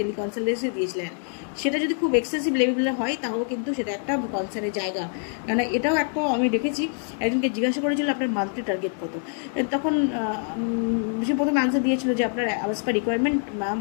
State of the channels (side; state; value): right; silent; 55 dB below the other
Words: দিয়েছিলেন। সেটা যদি খুব এক্সেসিভ লেভেলের হয় তাহলে কিন্তু সেটা একটা কনসার্নের জায়গা, কারণ এটাও একটা আমি দেখেছি একজনকে জিজ্ঞাসা করেছিল আপনার মান্থলি টার্গেট কত, তখন সে প্রথমে আনসার দিয়েছিল যে আপনার অ্যাজ পার রিকোয়ারমেন্ট ম্যাম